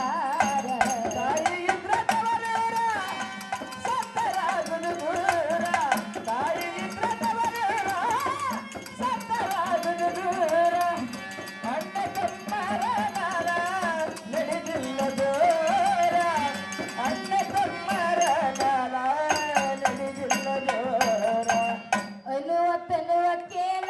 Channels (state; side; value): identical; both; correlation 1.00